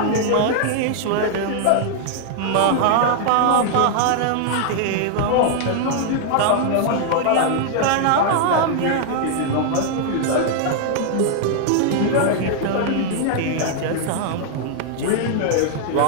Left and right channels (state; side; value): different; both; correlation 0.00